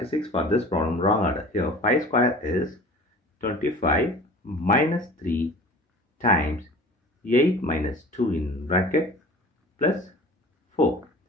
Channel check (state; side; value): normal; both; correlation 0.42